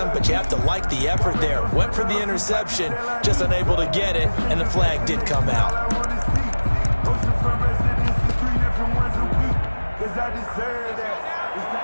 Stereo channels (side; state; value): both; inverted; correlation -1.00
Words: but you have to like the effort there. Went for the interception, just unable to get it, and the flag did come out.